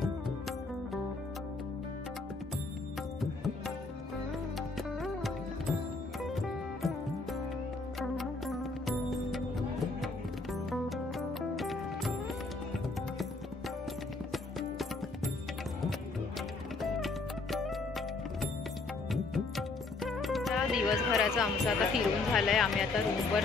दिवसभराचं आमचं आता फिरून झालं आहे. आम्ही आता रूमवर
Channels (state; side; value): quieter; right; 3.6 dB